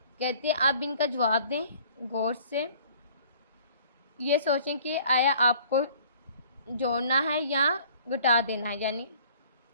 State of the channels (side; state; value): both; inverted; correlation -0.53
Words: कहते हैं आप इनका जवाब दें गौर से, ये सोचें कि आया आपको जोड़ना है या घटा देना है, यानी